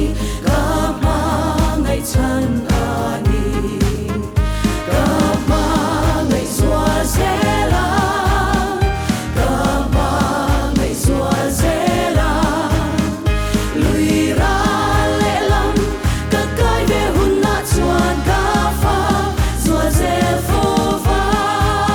ka ma ngai chan ani ka ma ngai zua zela ka ma ngai zua zela lui ra le lam ka kai ve hun na chuan ka fa zua zel fo va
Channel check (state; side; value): identical; both; correlation 1.00